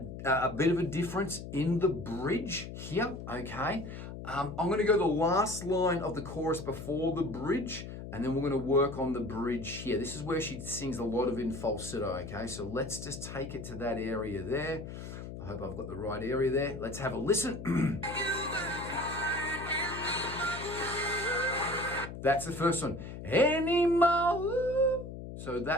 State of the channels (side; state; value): left; noise; hum, 10 dB below the sound